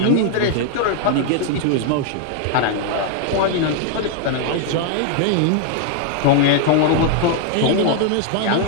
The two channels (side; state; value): both; different; correlation 0.00